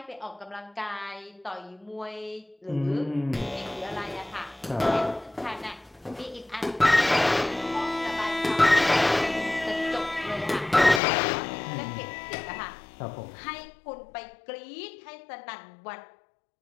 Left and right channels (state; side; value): drops out; right; at 11.0 s